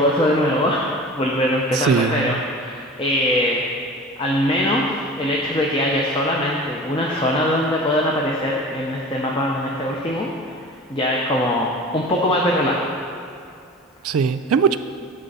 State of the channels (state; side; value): normal; both; correlation 0.37